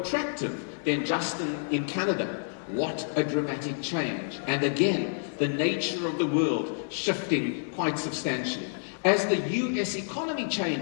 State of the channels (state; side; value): silent; right; 59 dB below the other